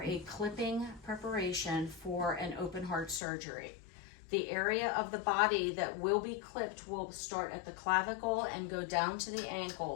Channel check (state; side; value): drops out; right; at 3.2 s